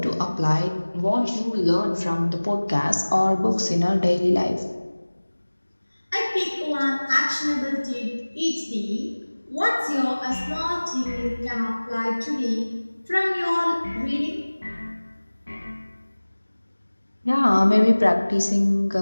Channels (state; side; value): inverted; both; correlation -1.00